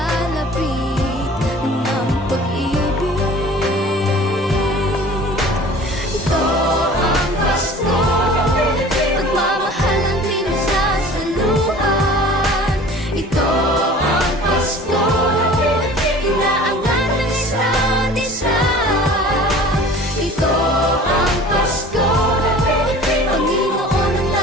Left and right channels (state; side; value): normal; both; correlation 0.44